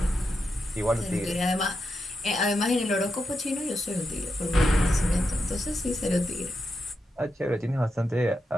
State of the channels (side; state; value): both; normal; correlation 0.86